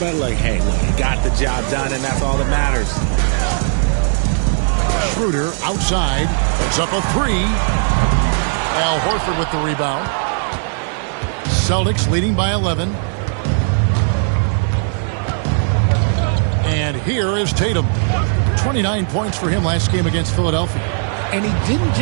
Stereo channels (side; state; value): left; silent; digital silence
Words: hey, he got the job done, and that's all that matters. Schroeder outside. Puts up a 3. Al Horford with the rebound. Celtics leading by 11. And here is Tatum. 29 points for him last game against Philadelphia. And he didn't